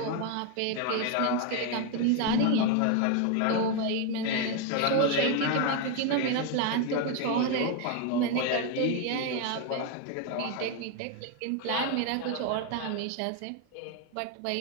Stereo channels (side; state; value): both; different; correlation 0.01